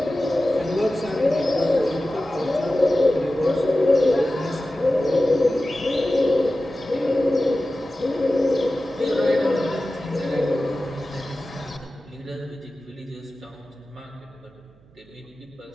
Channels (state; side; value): noise; right; hum, 29 dB below the sound